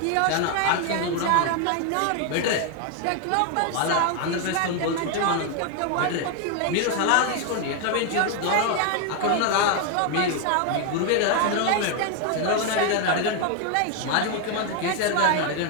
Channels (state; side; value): different; both; correlation 0.01